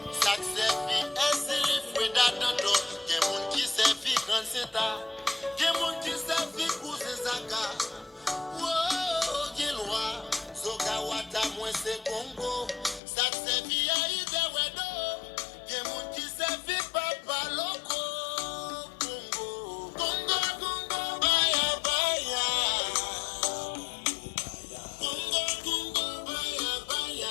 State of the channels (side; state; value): right; drops out; at 13.0 s